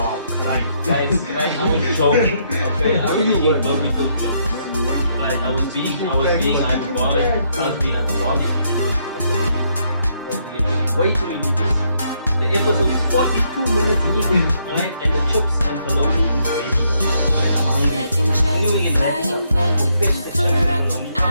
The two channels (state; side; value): inverted; both; correlation -0.74